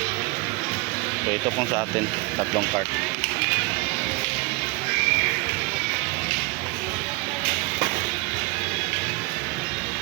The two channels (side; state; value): left; quieter; 26.2 dB